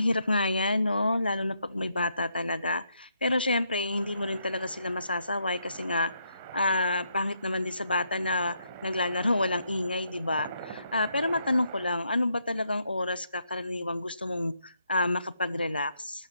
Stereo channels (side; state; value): both; inverted; correlation -0.77